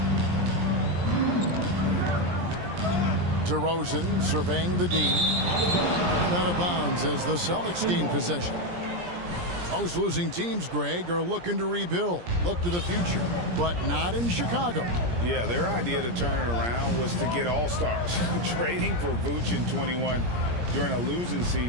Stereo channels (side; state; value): left; late; 17 ms